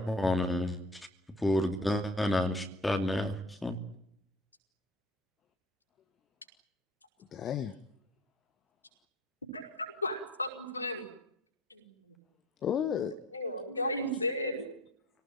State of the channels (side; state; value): both; normal; correlation 0.43